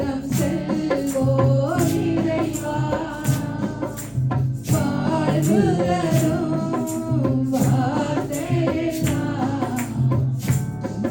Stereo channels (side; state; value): left; noise; hum, 26 dB below the sound